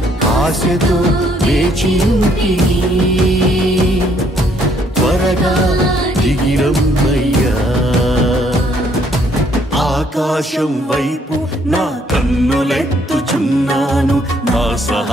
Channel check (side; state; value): both; normal; correlation 0.67